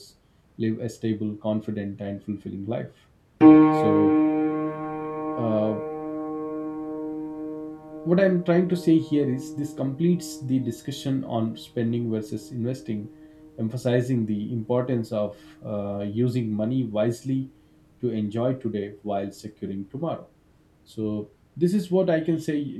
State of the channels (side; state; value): both; identical; correlation 1.00